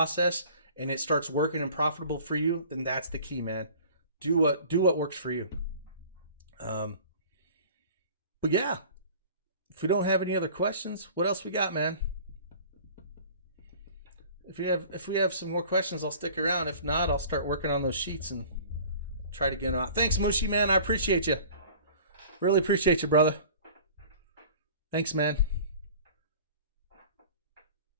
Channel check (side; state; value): both; inverted; correlation -0.45